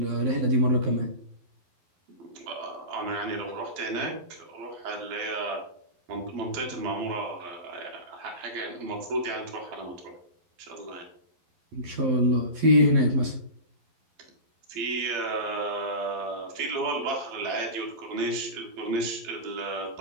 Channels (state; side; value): late; left; 12 ms